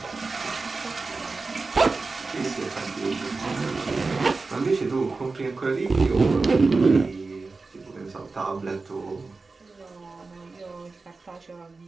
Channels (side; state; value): left; quieter; 3.9 dB